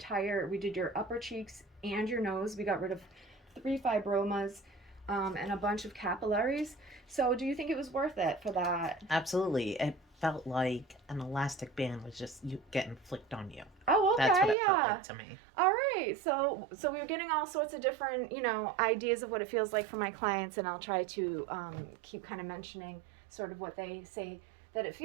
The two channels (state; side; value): drops out; left; at 14.6 s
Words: upper cheeks and your nose. We got rid of 3 fibromas and a bunch of capillaries. So do you think it was worth it for that? Absolutely. It felt like an elastic band was just getting flicked on you. Oh, okay, That's what it yeah. felt like to me. All right, so we were getting all sorts of different, you know, ideas of what it feels like for my clients, and I'll try to keep kind of mentioning sort of what they say that it